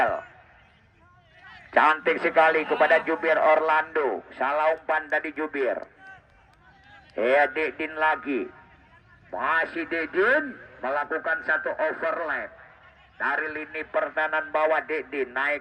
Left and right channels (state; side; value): identical; both; correlation 1.00